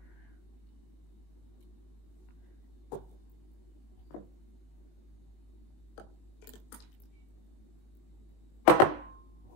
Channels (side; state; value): right; late; 20 ms